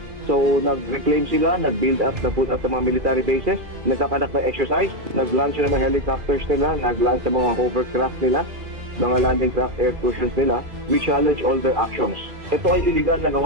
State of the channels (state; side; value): late; left; 2.3 ms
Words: So, nag-reclaim sila, nag-build up, nag-put up ng mga military bases, nagkakanak ng exercise, nag-launch ng mga helicopters nila, nag-launch ng mga hovercraft nila, mga landing craft air cruisers nila. We challenge all their actions. Ito ay illegal na